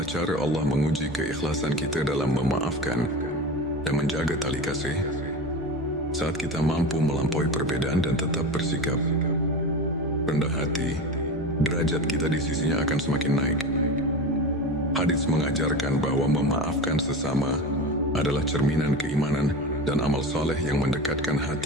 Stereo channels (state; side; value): noise; left; hum, 25 dB below the sound